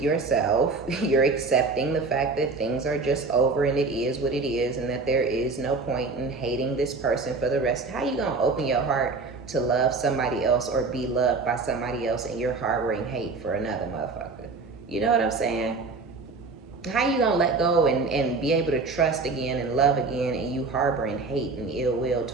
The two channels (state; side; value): quieter; left; 4.0 dB